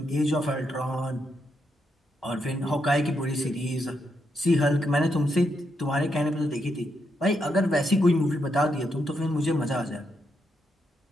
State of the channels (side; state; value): both; normal; correlation 0.81